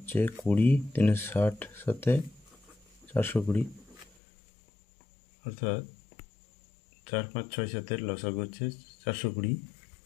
20, 3 60, 7 420, অর্থাৎ 4 5 6 7 লসাগু হচ্ছে 420।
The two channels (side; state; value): right; drops out; at 4.1 s